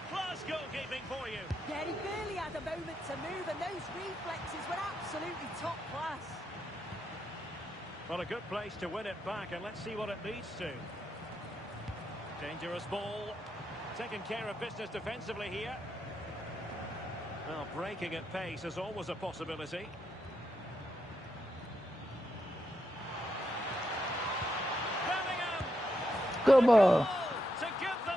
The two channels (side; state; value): both; normal; correlation 0.83